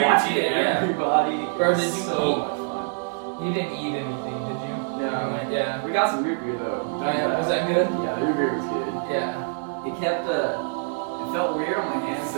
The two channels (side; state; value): left; silent; digital silence